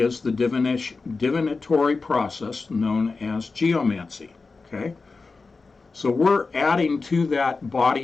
the divinatory process known as geomancy. Okay, So we're adding to that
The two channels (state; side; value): quieter; right; 4.1 dB